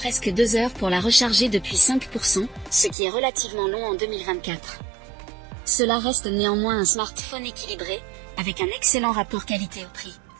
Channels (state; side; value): drops out; left; at 3.0 s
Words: 2 heures pour la recharger depuis 5%, ce qui est relativement long en 2024. Cela reste néanmoins un smartphone équilibré, avec un excellent rapport qualité au prix.